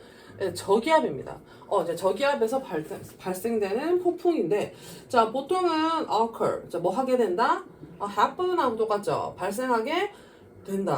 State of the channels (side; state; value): both; identical; correlation 1.00